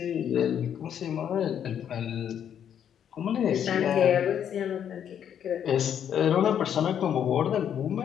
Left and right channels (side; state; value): right; quieter; 9.1 dB